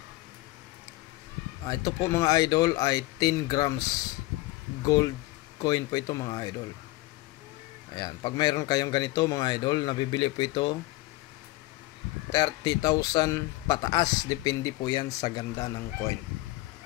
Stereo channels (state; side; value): quieter; right; 19.6 dB